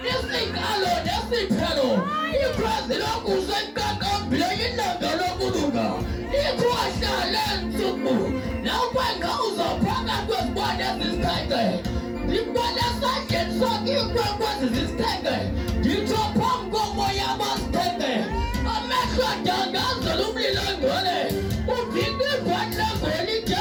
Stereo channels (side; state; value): both; identical; correlation 1.00